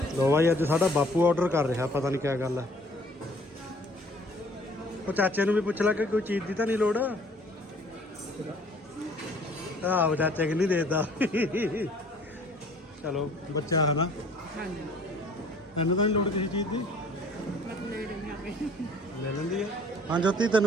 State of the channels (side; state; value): both; normal; correlation 0.55